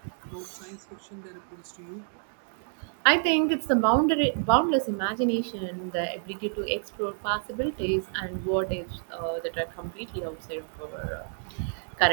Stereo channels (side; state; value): left; silent; digital silence